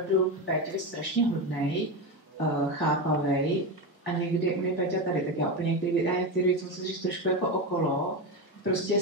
v Péťovi strašně hodnej, chápavej a někdy u mě Péťa tady, tak já úplně některé věci musím říct trošku jako okolo. Prostě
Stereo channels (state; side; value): normal; both; correlation 0.16